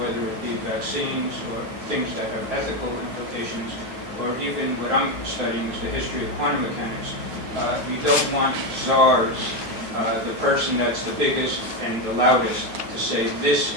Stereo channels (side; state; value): left; late; 9.3 ms